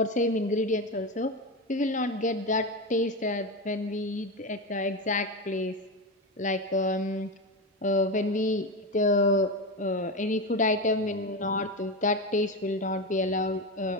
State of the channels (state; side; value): normal; both; correlation 0.17